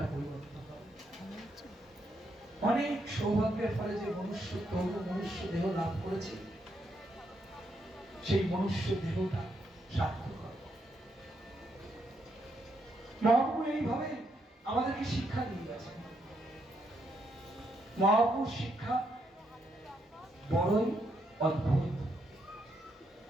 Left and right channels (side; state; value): both; normal; correlation 0.78